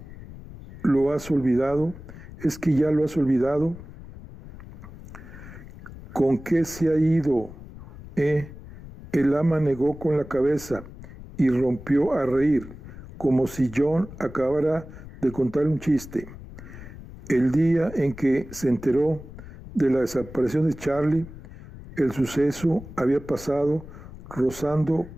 lo has olvidado? ¿Es que ya lo has olvidado? ¿Con qué se ha ido? El ama negó con la cabeza y rompió a reír, como si John acabara de contar un chiste. El día en que se enteró de la desaparición de Charlie, el suceso había pasado rozando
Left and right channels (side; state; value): left; noise; rumble, 15 dB below the sound